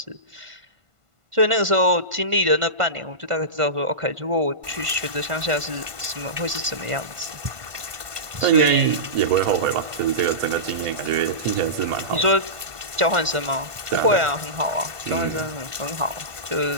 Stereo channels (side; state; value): left; late; 1.5 ms